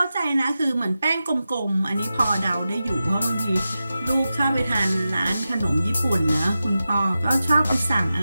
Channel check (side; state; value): both; inverted; correlation -0.92